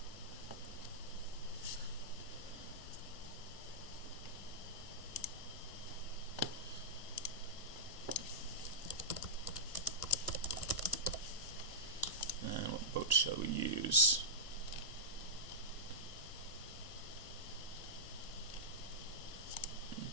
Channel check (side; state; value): right; late; 1.5 ms